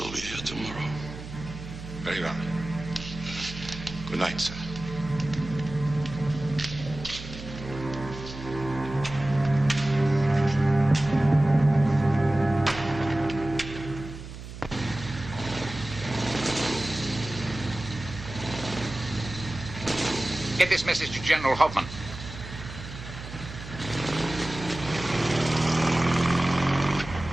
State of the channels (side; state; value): right; noise; hum, 12 dB below the sound